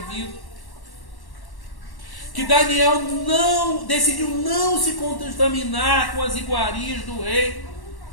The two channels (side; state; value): right; late; 1.1 ms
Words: que Daniel decidiu não se contaminar com as iguarias do rei.